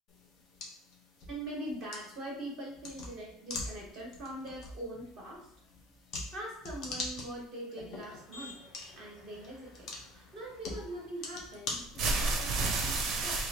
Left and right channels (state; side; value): normal; both; correlation 0.49